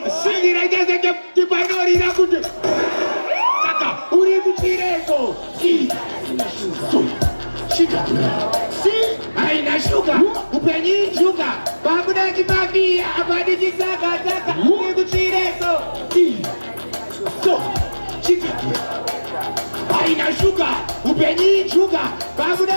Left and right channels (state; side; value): inverted; both; correlation -1.00